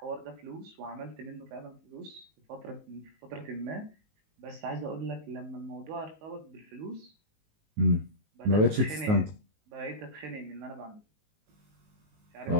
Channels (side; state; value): left; late; 19 ms